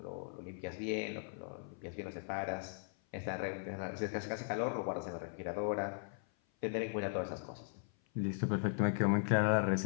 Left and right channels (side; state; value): right; silent; 52 dB below the other